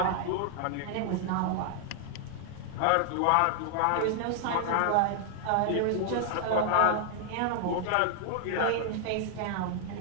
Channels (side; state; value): both; different; correlation 0.00